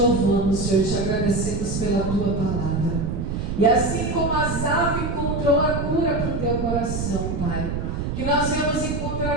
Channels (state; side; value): noise; right; rumble, 3 dB below the sound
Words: Senhor, te agradecemos pela tua palavra. E assim como Asaf encontrou a cura para o teu coração, Pai, que nós venhamos